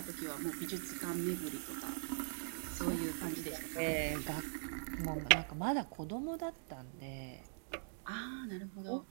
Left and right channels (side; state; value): left; silent; digital silence